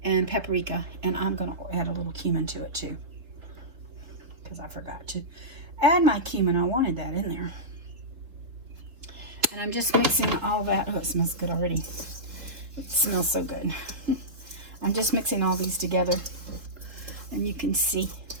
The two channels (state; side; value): late; left; 3.8 ms